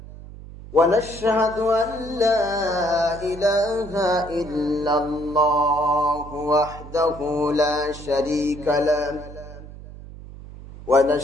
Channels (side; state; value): right; noise; hum, 15 dB below the sound